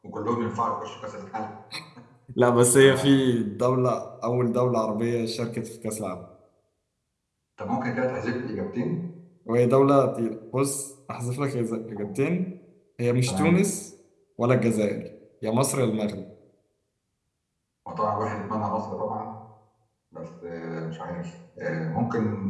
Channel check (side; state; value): both; identical; correlation 1.00